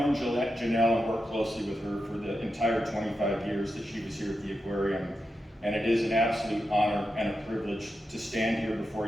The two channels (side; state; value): both; normal; correlation 0.88